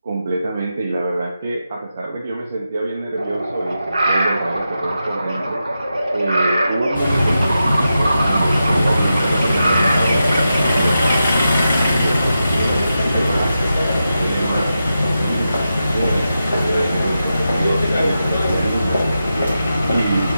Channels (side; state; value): both; inverted; correlation -0.89